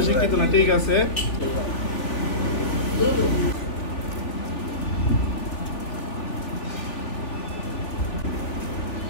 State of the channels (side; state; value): right; late; 3.5 ms